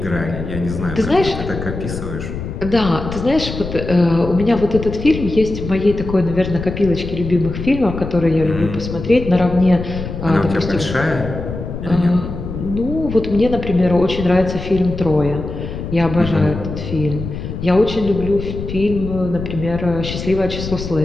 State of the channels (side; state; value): left; noise; rumble, 7 dB below the sound